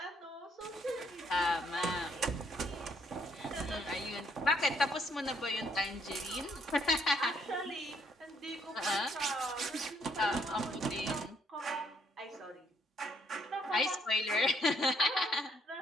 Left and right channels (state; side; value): normal; both; correlation 0.70